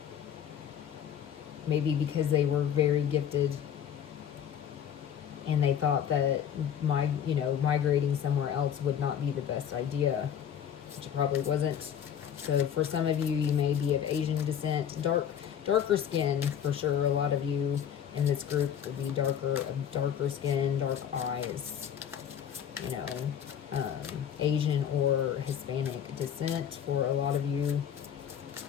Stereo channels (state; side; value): quieter; right; 8.9 dB